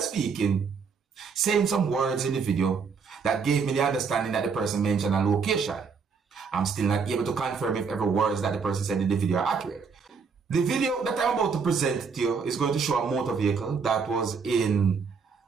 speaking, saying some words in the video that gave me the understanding that the person mentioned a location. I'm still not able to confirm if every words that the person said in the video are accurate. The video that I'm about to present to you is going to show a motor vehicle that was in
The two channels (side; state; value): left; quieter; 5.6 dB